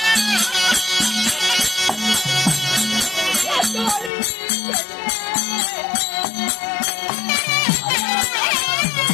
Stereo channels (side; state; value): right; drops out; at 4.1 s